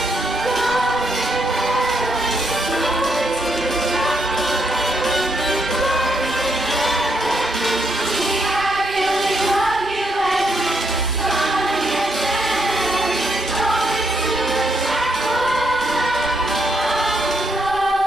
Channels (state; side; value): normal; both; correlation 0.76